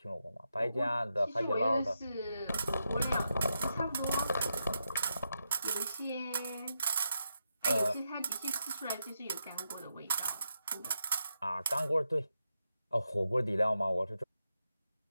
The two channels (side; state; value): both; inverted; correlation -0.85